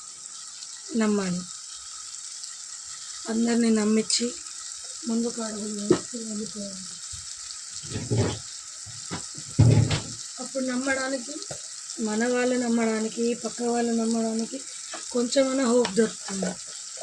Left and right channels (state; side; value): identical; both; correlation 1.00